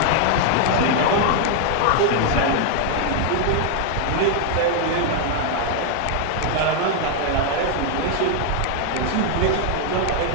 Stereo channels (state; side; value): different; both; correlation 0.00